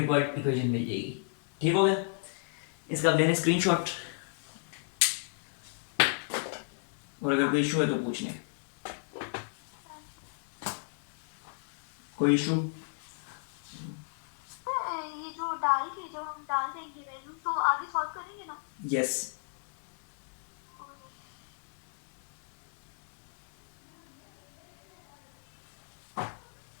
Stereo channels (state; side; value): silent; right; digital silence